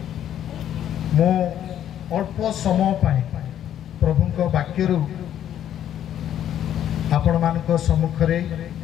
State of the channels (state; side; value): quieter; right; 10.6 dB